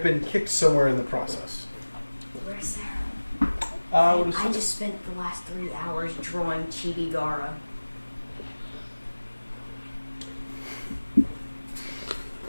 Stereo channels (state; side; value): inverted; both; correlation -1.00